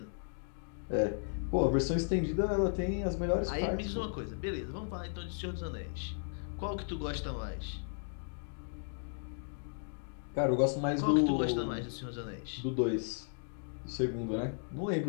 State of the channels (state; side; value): silent; right; digital silence